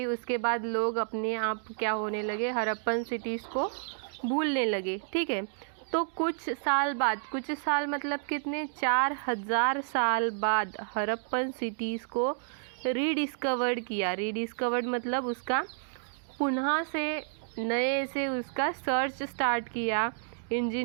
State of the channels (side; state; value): left; silent; digital silence